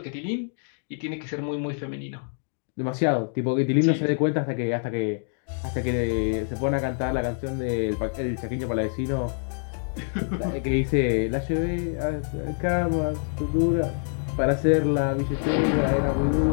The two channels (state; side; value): silent; right; 61 dB below the other